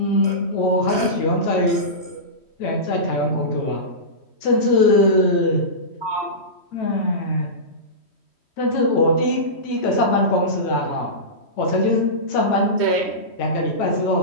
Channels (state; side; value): late; right; 3.1 ms